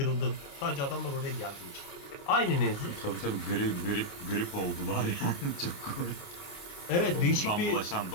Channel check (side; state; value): right; late; 28 ms